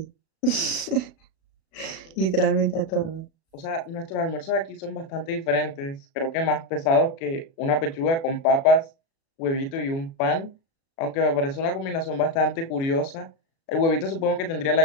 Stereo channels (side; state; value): right; late; 36 ms